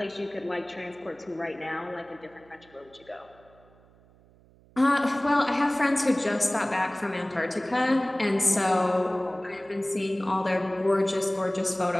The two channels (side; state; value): right; noise; hum, 28 dB below the sound